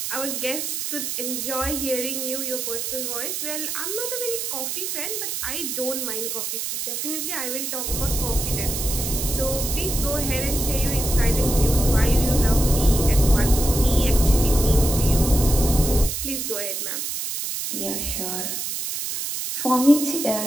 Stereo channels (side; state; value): right; noise; hiss, 3 dB below the sound